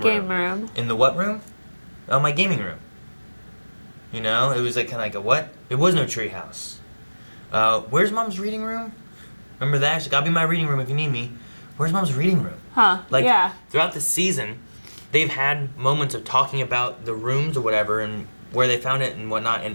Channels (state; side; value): inverted; both; correlation -1.00